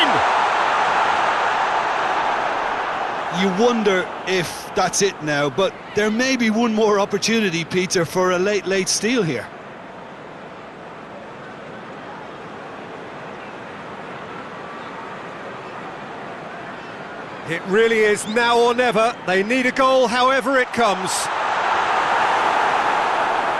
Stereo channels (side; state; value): both; identical; correlation 1.00